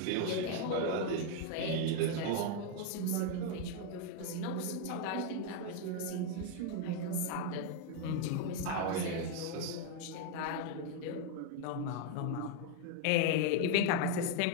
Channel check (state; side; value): different; both; correlation 0.01